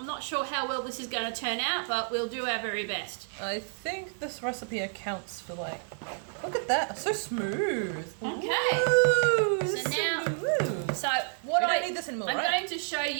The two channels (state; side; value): silent; left; digital silence